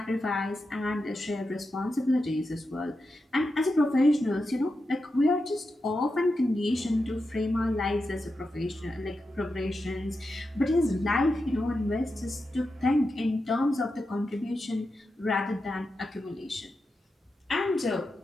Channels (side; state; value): both; normal; correlation 0.89